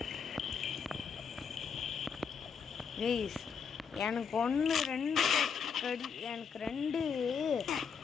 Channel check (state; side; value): quieter; right; 6.4 dB